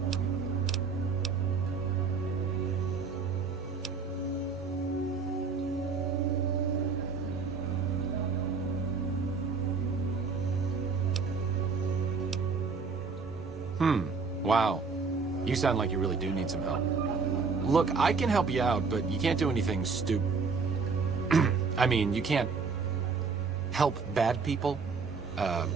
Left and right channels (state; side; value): quieter; left; 4.9 dB